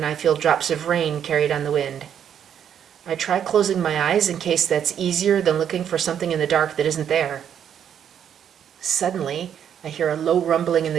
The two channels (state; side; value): quieter; left; 9.0 dB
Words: I feel drops of rain carried on the wind. I try closing my eyes in case that's easier than looking for something in the dark that isn't there. Suddenly, I hear a low rumbling in